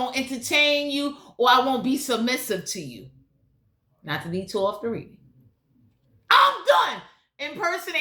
entertain you, or I won't be submissive to you. Not to detour off the reading. I'm done.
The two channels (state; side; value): identical; both; correlation 1.00